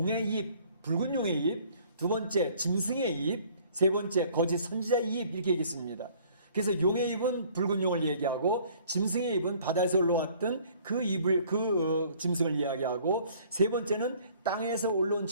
입, 붉은 용의 입, 두 번째 짐승의 입, 세 번째 거짓 선지자의 입, 이렇게 얘기했습니다. 그래서 용의 입은 붉은 용을 얘기하고, 짐승의 입은 바다에서 올라왔던 그 입을, 짐승을 이야기하고, 세 번째는 땅에서 올라온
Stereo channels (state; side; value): inverted; both; correlation -0.56